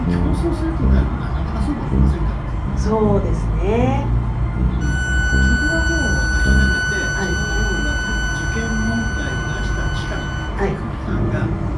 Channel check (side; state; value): both; identical; correlation 1.00